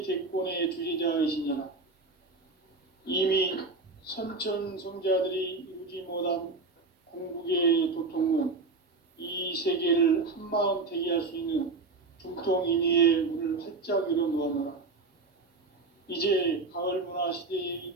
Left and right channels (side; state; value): left; quieter; 3.7 dB